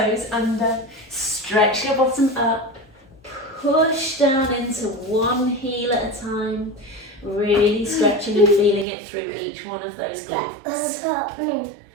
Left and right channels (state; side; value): drops out; left; at 8.8 s